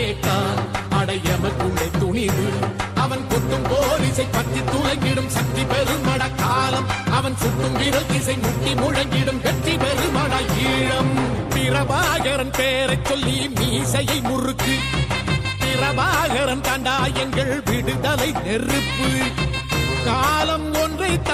அடையமக்குள்ளே துணிவு அவன் குத்தும் போலீசை பற்றி துளங்கிடும் சக்தி பெருமட காலம் அவன் சுட்டும் விரல் திசை முட்டி முழங்கிடும் வெற்றி பெருமட ஈழம் பிரபாகரன் பேரை சொல்லி மீசையை முறுக்கு பிரபாகரன் தாண்டா எங்கள் விடுதலை நெருப்பு காலம் ஒன்றை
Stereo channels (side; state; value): both; identical; correlation 1.00